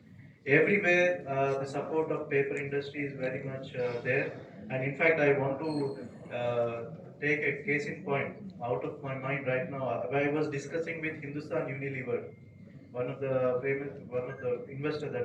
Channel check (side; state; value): both; identical; correlation 1.00